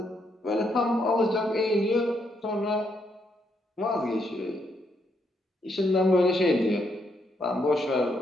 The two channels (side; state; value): both; normal; correlation 0.76